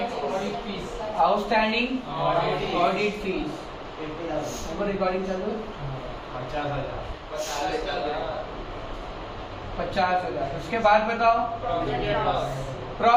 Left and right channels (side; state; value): both; identical; correlation 1.00